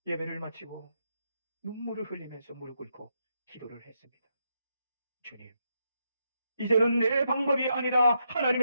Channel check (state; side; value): inverted; both; correlation -0.82